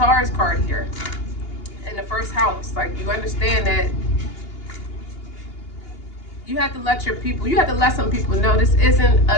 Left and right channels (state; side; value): late; right; 2.8 ms